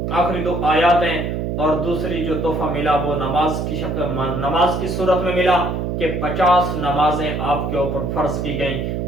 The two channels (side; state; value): right; noise; hum, 2 dB below the sound